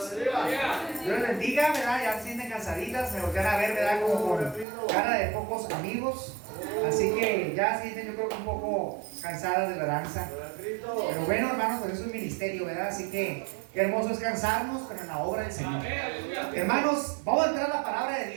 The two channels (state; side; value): drops out; left; at 4.7 s